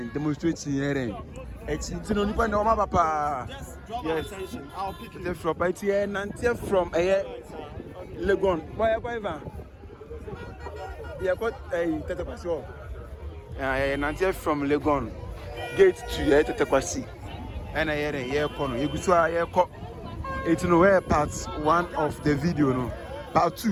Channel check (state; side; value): identical; both; correlation 1.00